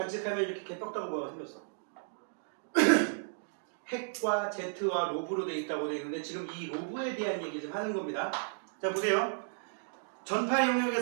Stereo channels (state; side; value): silent; left; digital silence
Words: 이렇게 개떡다구 모양이 생겼어. 핵과 Z와 로브로 되어 있다고 되어 있는데 지금 이 로브에 대한 얘기 좀 하는 겁니다. 자 보세요. 전파